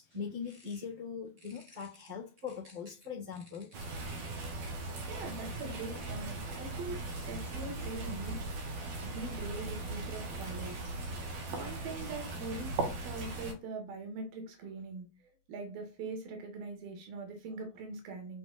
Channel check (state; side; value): late; left; 12 ms